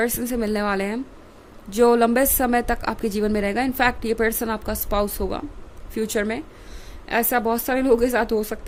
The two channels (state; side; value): identical; both; correlation 1.00